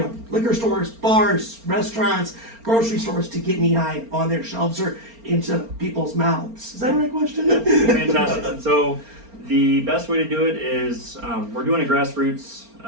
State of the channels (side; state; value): left; late; 4.3 ms